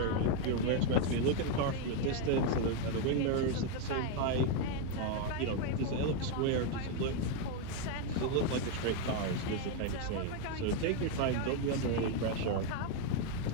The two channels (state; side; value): different; both; correlation 0.01